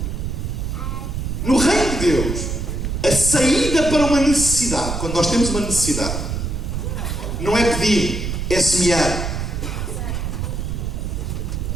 No reino de Deus, a saída para uma necessidade, quando nós temos uma necessidade, não é pedir, é semear.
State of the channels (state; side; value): noise; right; rumble, 3 dB below the sound